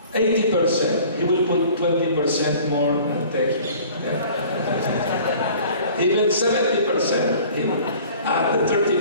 80%, he will put 20% more and take it. Even 70%, he will add the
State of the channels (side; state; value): both; inverted; correlation -0.48